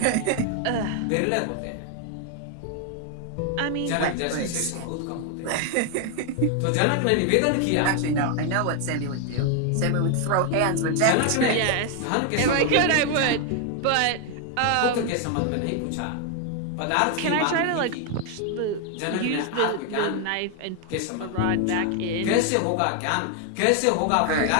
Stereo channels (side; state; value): both; different; correlation 0.00